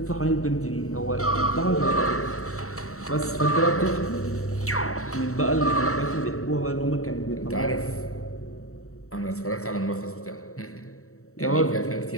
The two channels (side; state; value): right; late; 0.64 ms